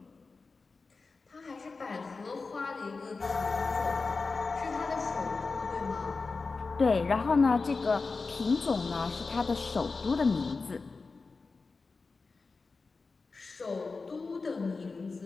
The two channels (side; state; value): right; quieter; 4.1 dB